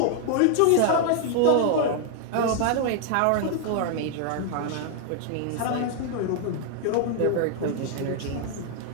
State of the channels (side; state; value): both; different; correlation 0.00